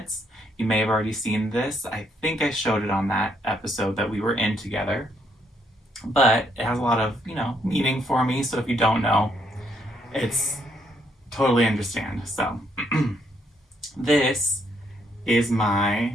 you may have already seen this. I think I showed it on that episode that we were in together. But it has a lot of, meaning for me. So if you don't know, it's totally understand. So this is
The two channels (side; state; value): both; normal; correlation 0.72